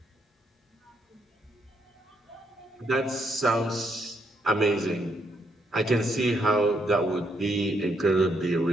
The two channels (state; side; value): normal; both; correlation 0.75